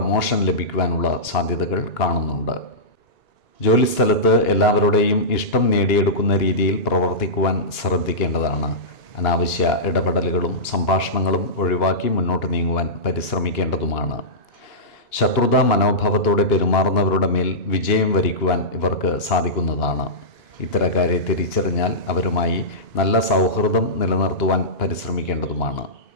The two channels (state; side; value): late; right; 2.8 ms